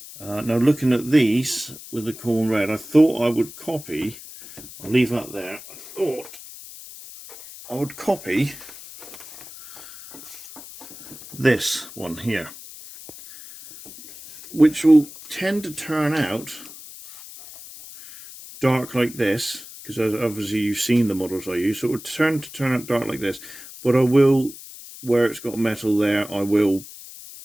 Now looking at these with the Khorne red, I thought I would copy, I'll leave that there, I thought I would copy this one here, which will tend to turn out dark like this, because obviously you've seen the models I use, so it would turn out dark like this, but I will, where it's got metal there, I will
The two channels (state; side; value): noise; left; hiss, 16 dB below the sound